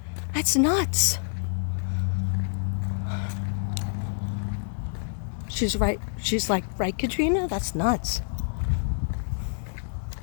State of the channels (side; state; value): right; silent; digital silence